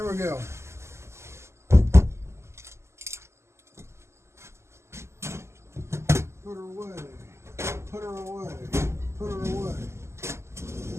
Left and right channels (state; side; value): late; left; 0.13 ms